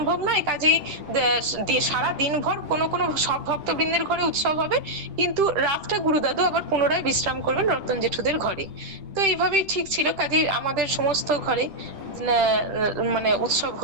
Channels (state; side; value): late; left; 10 ms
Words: নয়, কাজেই সারা দিনভর কোনো কোনো সব ভক্তবৃন্দের ঘরে উৎসব হবে, কিন্তু রাতটা গুরুদাদু আবার পুনরায় বিশ্রাম করবেন রতন জেঠুদের ঘরে। তো এইভাবেই ঠিক ছিল, কাজেই আমাদের সমস্ত ঘরে মানে উৎসব